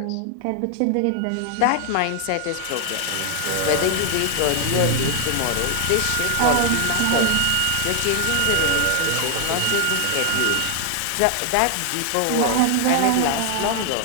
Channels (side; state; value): both; different; correlation 0.00